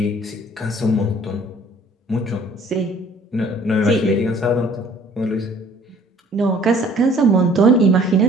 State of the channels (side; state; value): both; normal; correlation 0.56